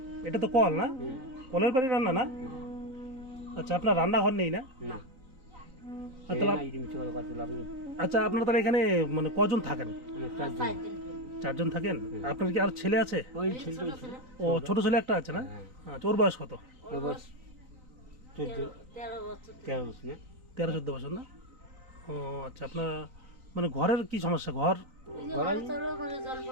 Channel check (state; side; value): late; left; 3.9 ms